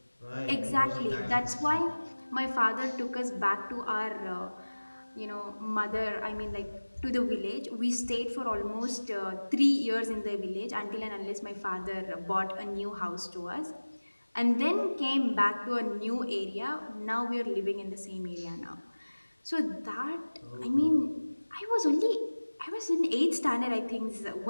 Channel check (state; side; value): inverted; both; correlation -1.00